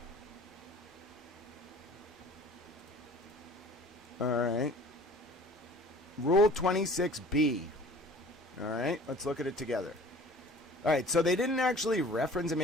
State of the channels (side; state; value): both; normal; correlation 0.47